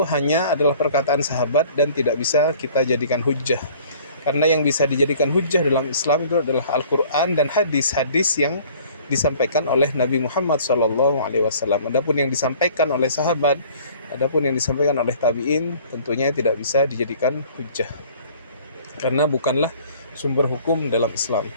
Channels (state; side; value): inverted; both; correlation -0.52